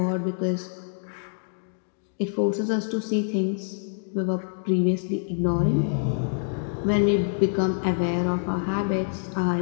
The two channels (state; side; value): silent; right; digital silence